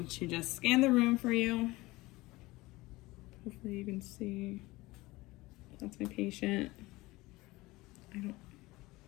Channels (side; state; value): right; quieter; 20.4 dB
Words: to just scan the room for you. Hopefully you can see. That's my patient. I don't